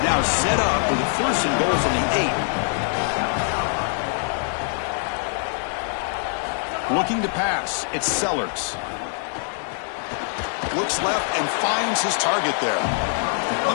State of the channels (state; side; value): silent; right; 63 dB below the other